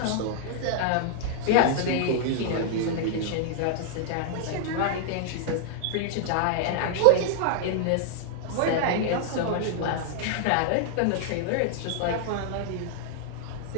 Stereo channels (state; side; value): different; both; correlation -0.01